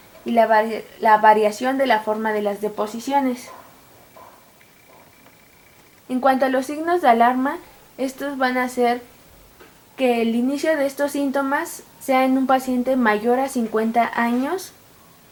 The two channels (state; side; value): identical; both; correlation 1.00